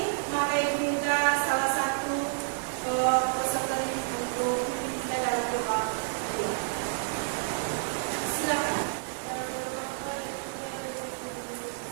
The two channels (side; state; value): left; silent; digital silence